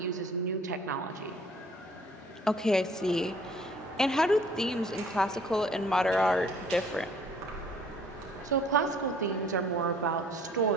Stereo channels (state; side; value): normal; both; correlation 0.56